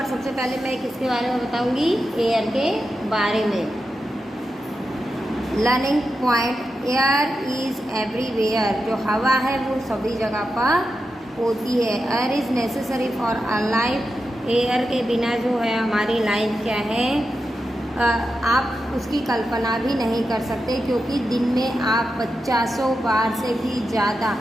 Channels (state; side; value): normal; both; correlation 0.89